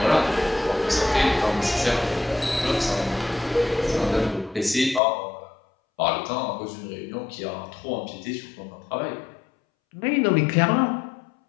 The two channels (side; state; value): right; drops out; at 5.0 s